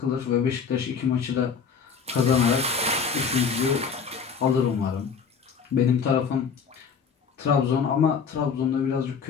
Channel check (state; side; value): quieter; right; 6.2 dB